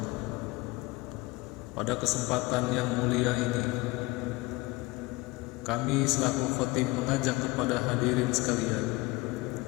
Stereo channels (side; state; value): right; quieter; 22.5 dB